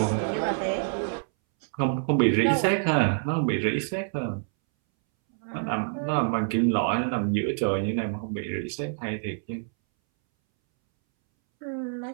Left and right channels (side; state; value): left; silent; 60 dB below the other